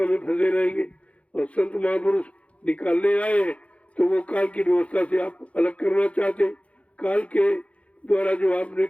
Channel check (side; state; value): right; late; 0.063 ms